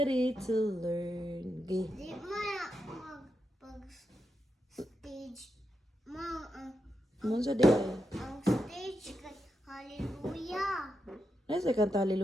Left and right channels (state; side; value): normal; both; correlation 0.86